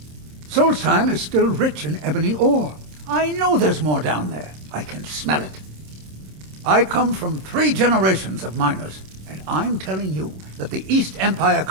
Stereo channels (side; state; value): left; late; 26 ms